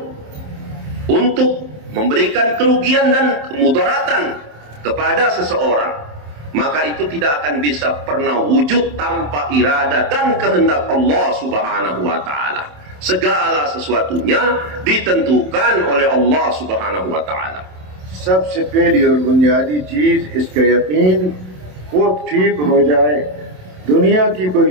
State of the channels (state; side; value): late; left; 27 ms